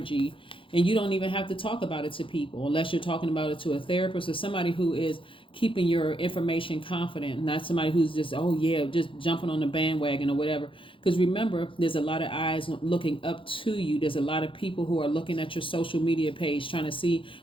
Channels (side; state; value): right; late; 0.25 ms